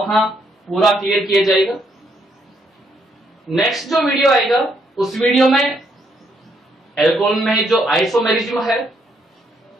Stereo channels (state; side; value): normal; both; correlation 0.73